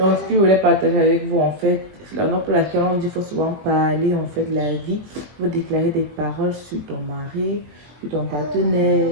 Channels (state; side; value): late; left; 20 ms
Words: ce que je voulais partager avec vous, en fait, c'est la raison pour laquelle on dit qu'il faut souvent parler, en fait, de la vie. Il faut déclarer des paroles sur ton mari, sur ton